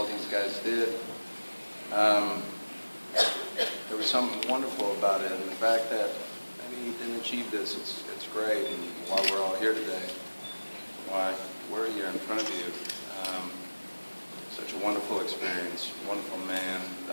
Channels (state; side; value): inverted; both; correlation -1.00